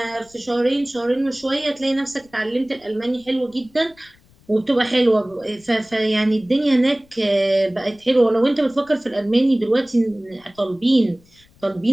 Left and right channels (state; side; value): noise; left; rumble, 30 dB below the sound